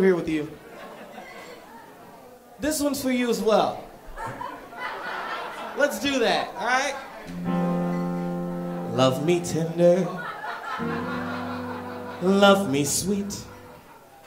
here with you. This one's for you as well. Let's do that, all right? Love me tender, love me sweet,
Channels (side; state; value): both; identical; correlation 1.00